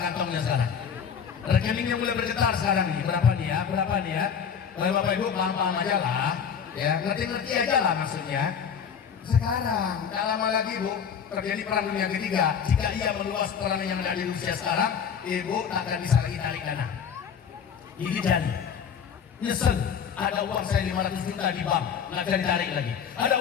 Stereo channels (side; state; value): right; quieter; 7.3 dB